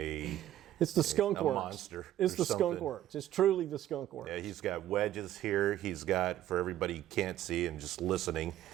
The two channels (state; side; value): quieter; left; 12.8 dB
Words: the skunk works. Monster. It's the skunk works. It's truly the skunk works. Yeah, he's got wedges here. He's got, for everybody who can't see and just listening,